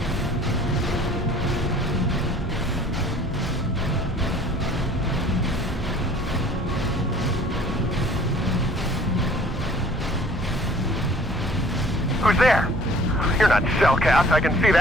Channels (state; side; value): normal; both; correlation 0.52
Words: Who's there? You're not Cellcast, I can see